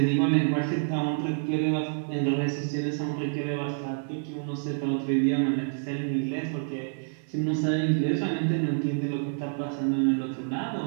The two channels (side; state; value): left; silent; digital silence